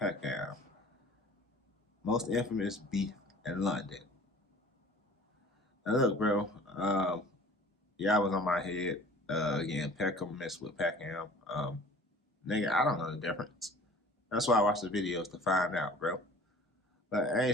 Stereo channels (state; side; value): normal; both; correlation 0.47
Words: Most infamous beef in London. Now look, bro. Yeah, I was on my head. Again, Peckham messed with Peckham. Nigga, I don't know the difference. That's why I watch the videos to find out, bro. But I